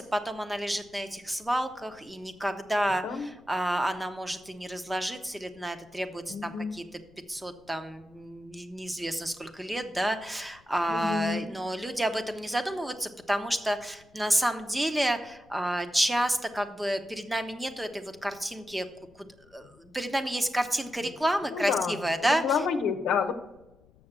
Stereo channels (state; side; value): noise; left; rumble, 28 dB below the sound